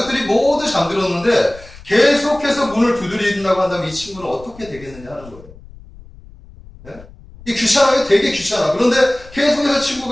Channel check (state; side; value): noise; left; rumble, 20 dB below the sound